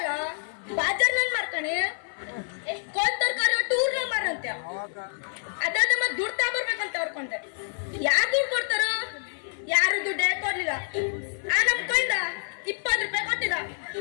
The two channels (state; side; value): silent; right; 57 dB below the other